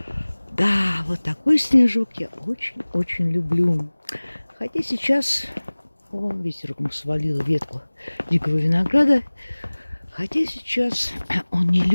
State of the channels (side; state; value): both; inverted; correlation -1.00